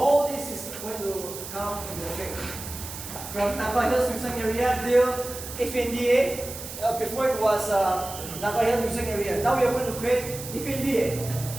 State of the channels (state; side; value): noise; right; hiss, 10 dB below the sound